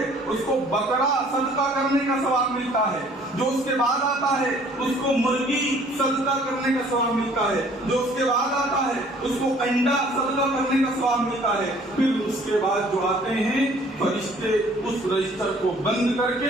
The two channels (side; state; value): both; normal; correlation 0.56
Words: اس کو بکرا صدقہ کرنے کا ثواب ملتا ہے. جو اس کے بعد آتا ہے اس کو مرغی صدقہ کرنے کا ثواب ملتا ہے. جو اس کے بعد آتا ہے اس کو انڈا صدقہ کرنے کا ثواب ملتا ہے. پھر اس کے بعد جو آتے ہیں فرشتے اس رجسٹر کو بند کر